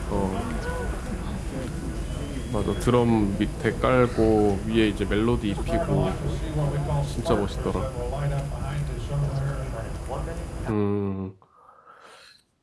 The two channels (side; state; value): both; identical; correlation 1.00